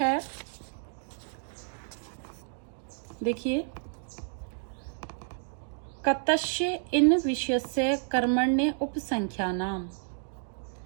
देखिए कतस्य इन विषयस्य कर्मण्य उपसंख्यानाम।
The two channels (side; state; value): left; silent; digital silence